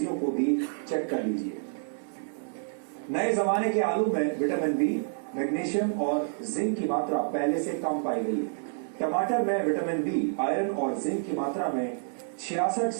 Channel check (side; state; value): left; silent; digital silence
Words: को भी चेक कर लीजिए। नए जमाने के आलू में विटामिन बी, मैग्नीशियम और जिंक की मात्रा पहले से कम पाई गई है। टमाटर में विटामिन बी, आयरन और जिंक की मात्रा में 66